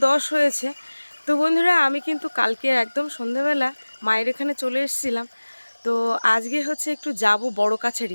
10 হয়েছে। তো বন্ধুরা, আমি কিন্তু কালকে একদম সন্ধ্যাবেলা মায়ের এখানে চলে এসেছিলাম। তো আজকে হচ্ছে একটু যাব বড়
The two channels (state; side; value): inverted; both; correlation -1.00